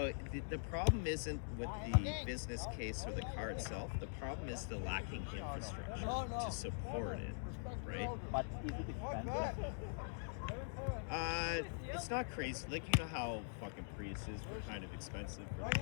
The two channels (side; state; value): right; silent; digital silence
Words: the problem isn't with the business case or the car itself. The problem is the lacking infrastructure to support it, right? But is it expensive? It's not crazy. Like, you know how fucking Priuses were kind of expensive for the